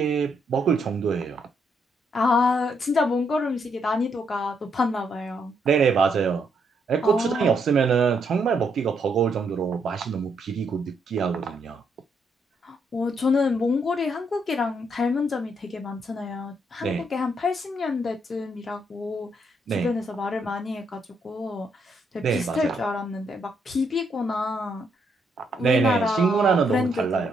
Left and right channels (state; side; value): normal; both; correlation 0.75